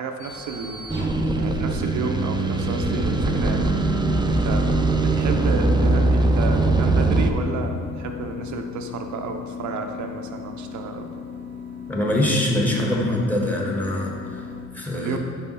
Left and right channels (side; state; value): both; normal; correlation 0.66